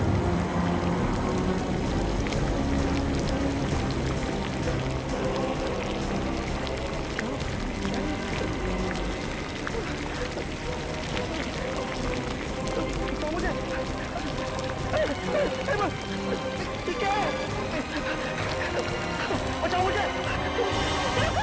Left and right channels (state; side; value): identical; both; correlation 1.00